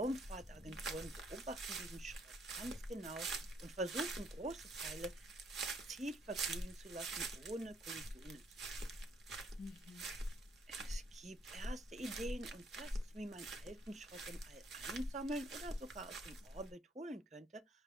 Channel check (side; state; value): both; normal; correlation 0.67